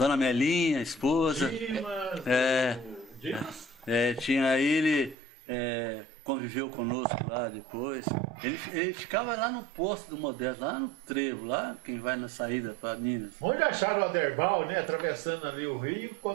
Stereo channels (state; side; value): drops out; left; at 5.2 s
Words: Melinha, a esposa. Dimas? Tinha ele, conviveu conosco lá depois. Ele ficava lá no posto do Modesto, lá no Trevo, lá quem vai na saída para Minas. Onde acharam o Aderbal, né? Atravessando ali o Rio,